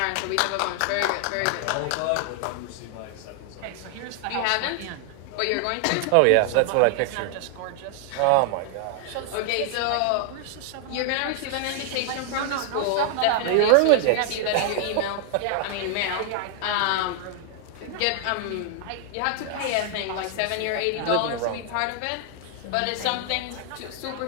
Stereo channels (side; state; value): both; different; correlation 0.00